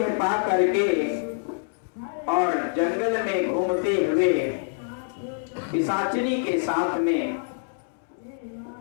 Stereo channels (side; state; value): right; silent; digital silence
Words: पा करके और जंगल में घूमते हुए पिशाचिनी के साथ में